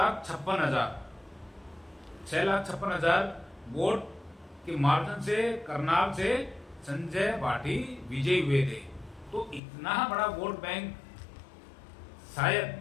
वोट के मार्जिन से करनाल से संजय भाटी विजयी हुए थे। तो इतना बड़ा वोट बैंक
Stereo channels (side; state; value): right; drops out; at 9.6 s